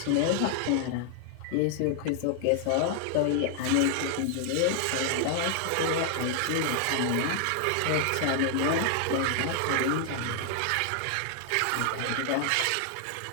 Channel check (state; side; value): different; both; correlation 0.00